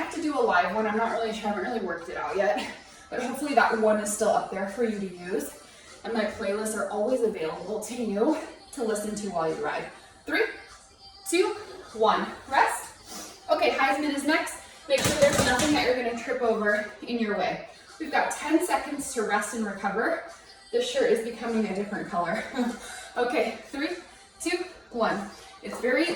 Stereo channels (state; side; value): identical; both; correlation 1.00